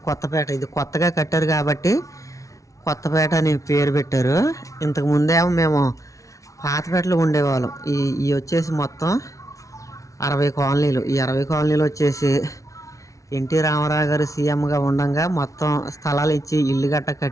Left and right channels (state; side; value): late; right; 0.16 ms